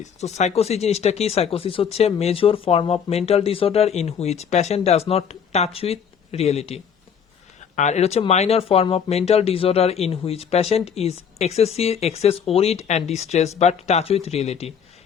So psychosis জিনিসটা কি, psychosis হচ্ছে major form of mental disorder in which patient does not touch with reality. আর এটা হচ্ছে minor form of mental disorder in which patient is excess worried and distress but touch with reality.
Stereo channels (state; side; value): quieter; right; 7.4 dB